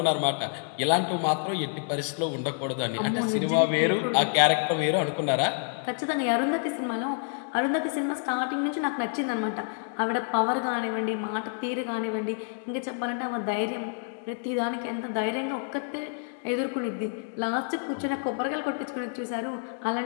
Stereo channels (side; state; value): right; silent; 57 dB below the other